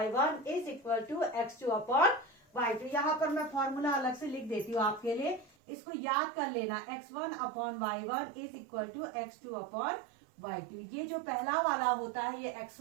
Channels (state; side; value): drops out; left; at 5.5 s